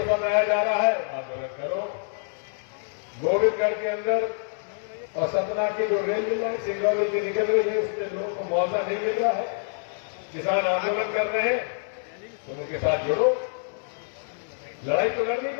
समझाया जा रहा है, आंदोलन करो। गोविंदगढ़ के अंदर और सतना की जो रेल मिल रहा है, सिंगरौली की निकल रही है, उसमें लोगों को मुआवजा नहीं मिल रहा है। किसान आंदोलन कर रहे हैं, तुम उनके साथ जुड़ो। लड़ाई तो लड़नी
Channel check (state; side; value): silent; right; digital silence